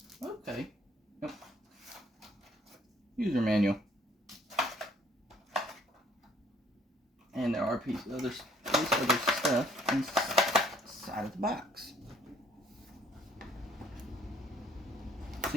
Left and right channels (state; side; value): normal; both; correlation 0.62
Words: Okay. Yep. User manual. And there are pieces of other stuff inside of the box.